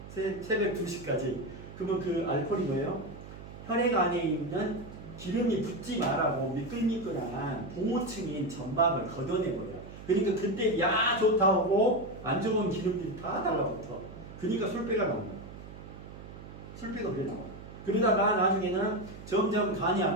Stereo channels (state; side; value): noise; right; hum, 14 dB below the sound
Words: 새벽 2시까지. 그러면 그 알코올이 뭐예요? 혈액 안에 있는 기름이 붙지 말라고 미끌미끌한 봉호층인 점막을 걷어내버려요. 그러니까 그때 야 좋다 하고 안 좋은 기름들이 다 달라붙어. 그러니까 술배가 나온 거예요. 술배가 그래 나와. 그러다가 나중에는 점점 간이